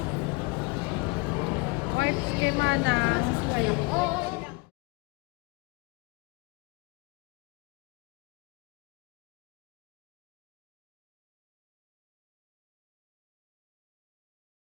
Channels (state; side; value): quieter; right; 25.8 dB